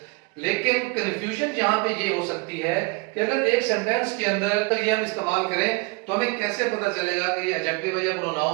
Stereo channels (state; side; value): quieter; left; 27.9 dB